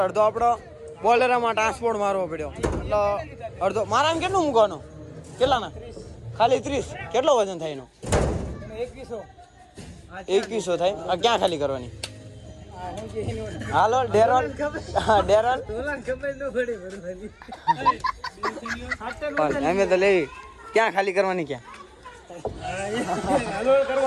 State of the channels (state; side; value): identical; both; correlation 1.00